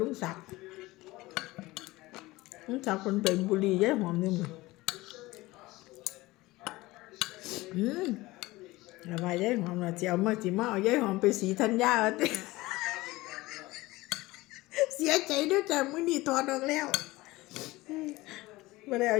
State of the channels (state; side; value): quieter; right; 19.8 dB